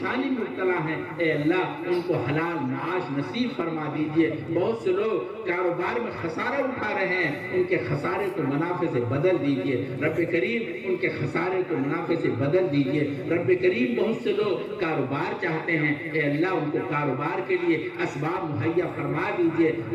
میں مبتلا ہیں، اے اللہ ان کو حلال معاش نصیب فرما دیجئے۔ بہت سے لوگ کاروبار میں خسارہ اٹھا رہے ہیں، ان کے خسارے کو منافع سے بدل دیجئے۔ رب کریم ان کے خسارے کو منافع سے بدل دیجئے۔ رب کریم بہت سے لوگ کاروبار چاہتے ہیں، اے اللہ ان کو کاروبار کے لیے اسباب مہیا فرما دیجئے۔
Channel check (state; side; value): identical; both; correlation 1.00